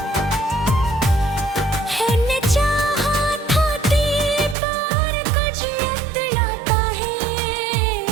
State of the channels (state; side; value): drops out; left; at 4.5 s